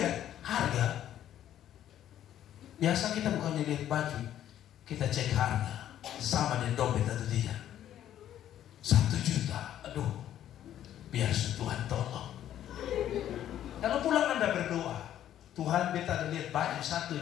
harga, biasa kita bukannya lihat baju, kita cek harga sama dengan dompet atau tidak. 1 juta, aduh, biar Tuhan tolong. Kalau pulang Anda berdoa, Tuhan beta ada lihat baju satu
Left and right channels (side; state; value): right; quieter; 11.4 dB